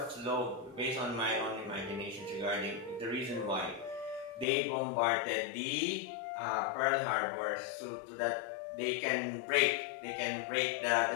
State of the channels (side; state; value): right; drops out; at 4.5 s